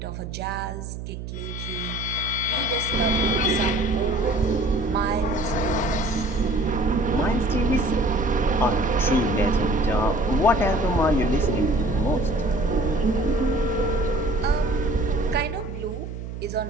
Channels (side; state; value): right; noise; hum, 9 dB below the sound